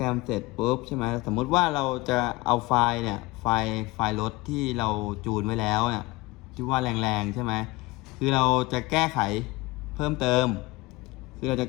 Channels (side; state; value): right; quieter; 21.9 dB